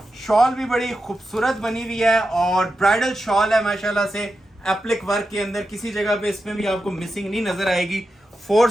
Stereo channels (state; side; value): normal; both; correlation 0.89